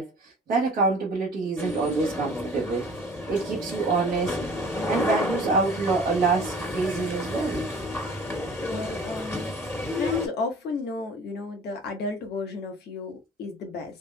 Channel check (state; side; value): normal; both; correlation 0.47